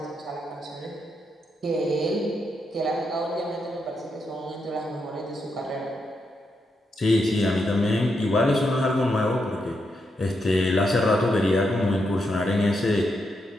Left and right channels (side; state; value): both; normal; correlation 0.82